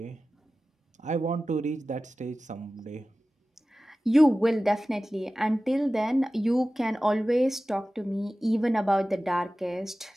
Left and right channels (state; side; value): normal; both; correlation 0.96